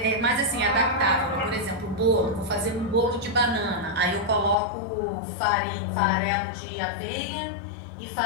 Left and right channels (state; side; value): drops out; right; at 4.5 s